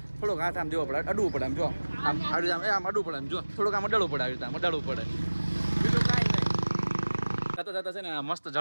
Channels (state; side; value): inverted; both; correlation -1.00